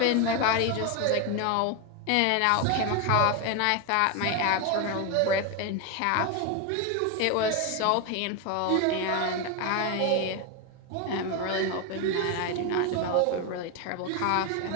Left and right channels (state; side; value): different; both; correlation 0.02